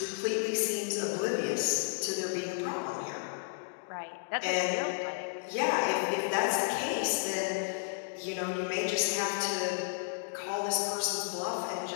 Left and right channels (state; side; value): silent; right; digital silence